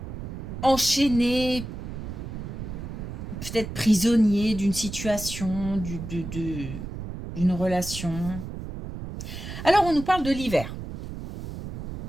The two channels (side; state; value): right; noise; rumble, 8 dB below the sound